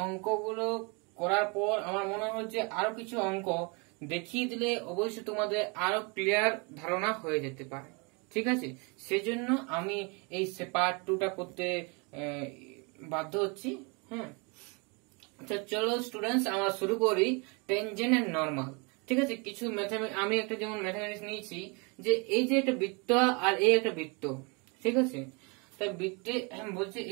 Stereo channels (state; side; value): quieter; left; 31.3 dB